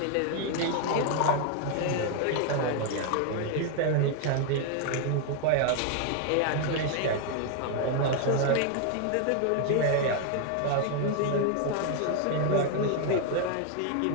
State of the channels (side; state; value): both; different; correlation 0.00